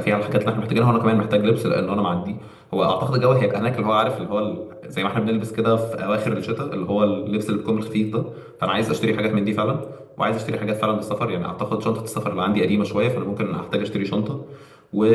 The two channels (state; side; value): identical; both; correlation 1.00